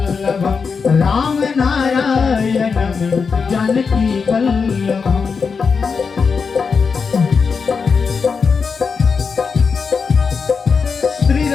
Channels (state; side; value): quieter; right; 5.4 dB